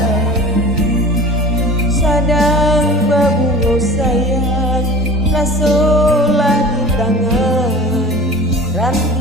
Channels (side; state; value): both; normal; correlation 0.39